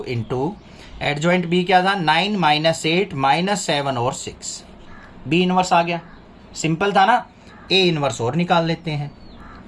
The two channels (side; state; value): both; identical; correlation 1.00